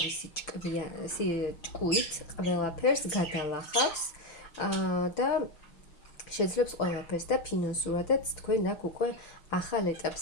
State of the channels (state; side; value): late; right; 6.0 ms